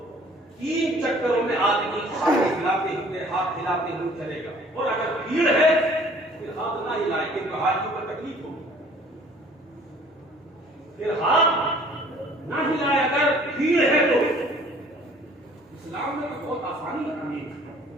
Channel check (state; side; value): normal; both; correlation 0.54